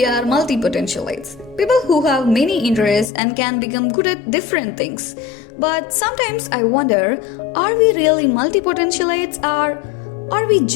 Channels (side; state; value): right; drops out; at 3.1 s